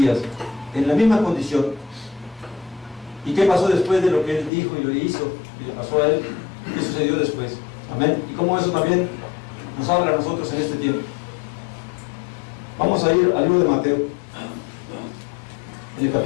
en la misma condición. ¿Y qué pasó después de lo que Él dijo y lo hizo y le pasó a Él? ¿Qué sucedió después? Amén. Y cómo eso también nos habla a nosotros en este tiempo. Vamos a ir al libro de Mateo, en el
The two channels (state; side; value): drops out; right; at 4.5 s